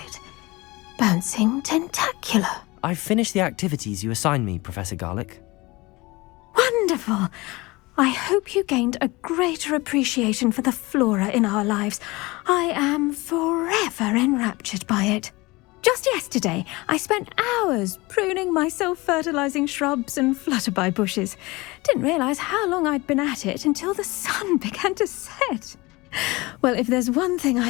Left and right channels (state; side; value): quieter; right; 22.7 dB